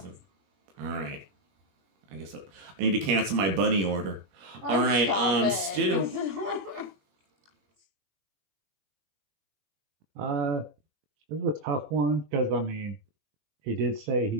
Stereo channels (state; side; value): late; left; 21 ms